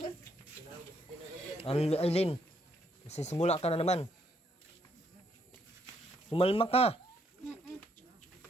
Aileen, simula ka na naman. Sumalma ka.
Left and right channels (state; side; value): normal; both; correlation 0.72